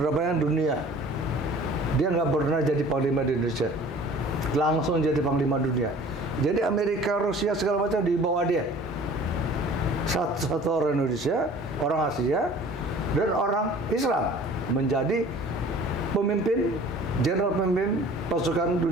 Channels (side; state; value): both; normal; correlation 0.47